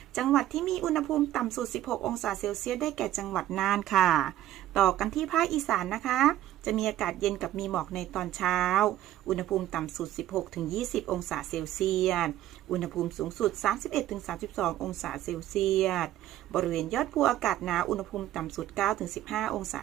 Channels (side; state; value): left; quieter; 13.3 dB